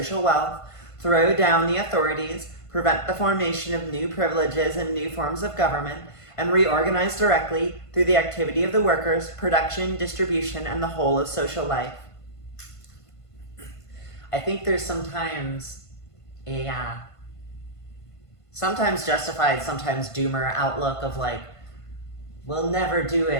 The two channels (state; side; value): late; right; 1.5 ms